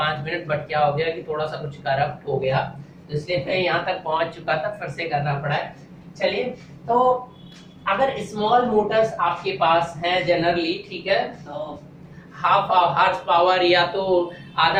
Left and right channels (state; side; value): identical; both; correlation 1.00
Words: मिनट, बट क्या हो गया कि थोड़ा सा कुछ करप्ट हो गया, तो इसलिए मैं यहाँ तक पहुंच चुका था, फिर से करना पड़ा है। चलिए, तो अगर स्मॉल मोटर्स आपके पास है जनरली, ठीक है, तो हाफ हार्स पावर या तो